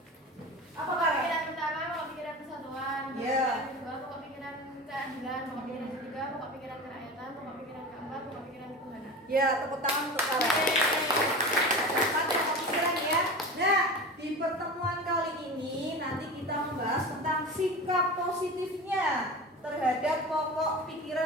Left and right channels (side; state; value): both; normal; correlation 0.30